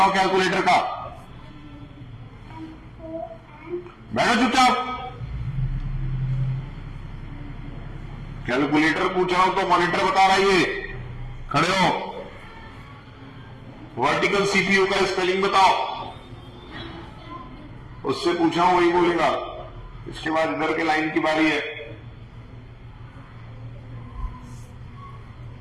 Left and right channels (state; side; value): identical; both; correlation 1.00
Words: कैलकुलेटर का। बैठो चुपचाप। कैलकुलेटर पूछ रहा हूं तो मॉनिटर बता रहा है ये। खड़े हो। वर्टिकल सीपीयू का स्पेलिंग बताओ। उससे पूछा हूं वही बोलेगा। इसके बाद इधर के लाइन की बारी है।